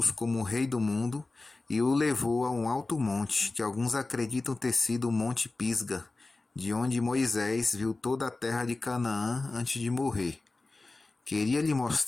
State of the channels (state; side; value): quieter; right; 3.3 dB